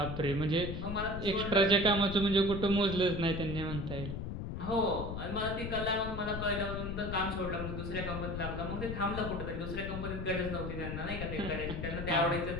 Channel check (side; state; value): left; noise; rumble, 5 dB below the sound